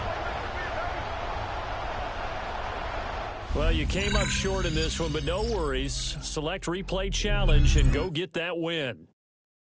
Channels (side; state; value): both; identical; correlation 1.00